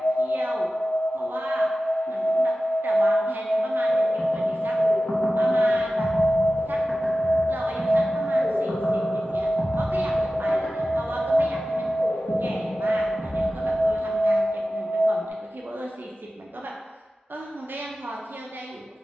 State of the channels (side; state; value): both; normal; correlation 0.95